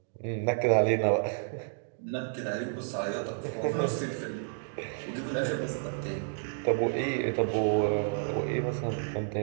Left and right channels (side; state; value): left; silent; digital silence